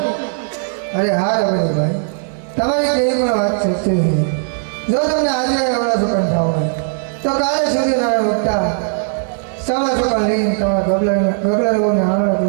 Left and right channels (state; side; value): silent; left; digital silence